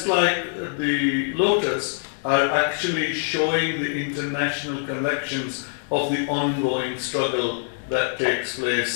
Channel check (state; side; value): silent; right; digital silence